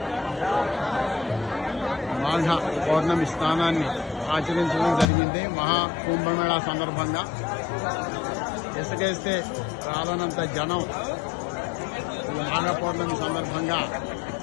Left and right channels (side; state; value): right; drops out; at 5.1 s